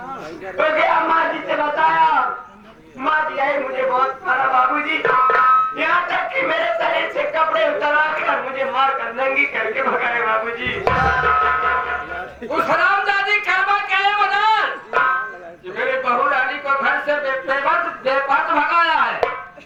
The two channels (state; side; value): identical; both; correlation 1.00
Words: गया माँ जी से बताया, माँ जी आई मुझे बहुत मारा बाबूजी, यहाँ तक कि मेरे शरीर से कपड़े उतरा कर मुझे मार कर नंगी करके भगाए बाबूजी। उस हरामजादी कर्मा क्या है बता कि मेरे बहू रानी को घर से बेपर्द भगाया है।